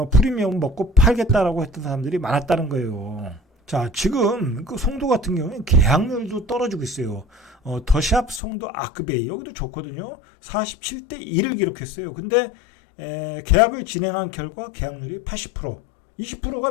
프리미엄 먹고 팔겠다라고 했던 사람들이 많았다는 거예요. 자, 지금 송도 같은 경우는 계약률도 떨어지고 있어요. 더샵 송도 아크베이 여기도 좋거든요. 47대 1을 기록했어요. 근데 계약을 진행한 결과 계약률이 80%, 20%가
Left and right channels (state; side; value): drops out; right; at 8.4 s